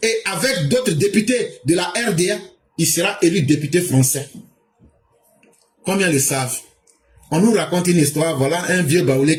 avec d'autres députés de la RDA, il sera élu député français. Combien le savent? On nous raconte une histoire, voilà un vieux baoulé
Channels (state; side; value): identical; both; correlation 1.00